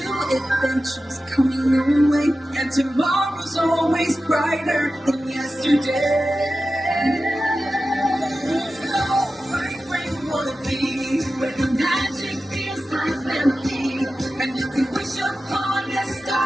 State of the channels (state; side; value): normal; both; correlation 0.93